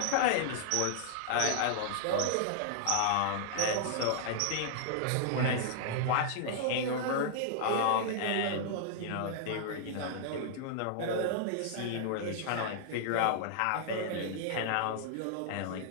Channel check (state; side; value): different; both; correlation -0.01